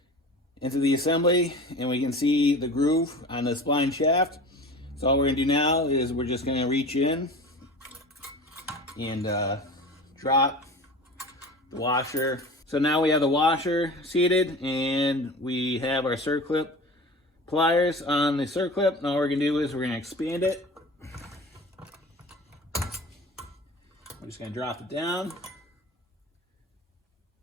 into the assembly, and we can see the groove on the spline shaft. So all we're gonna do now is we're just gonna reach in and drop the washer. So now we have the washer seated, and we have our circlip pliers on the circlip. Now all we're gonna do is we're gonna expand it. I'm just gonna drop it down.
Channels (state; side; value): normal; both; correlation 0.36